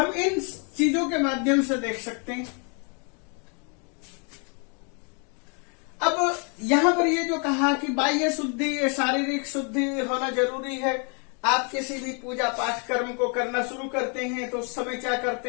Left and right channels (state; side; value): quieter; right; 37.2 dB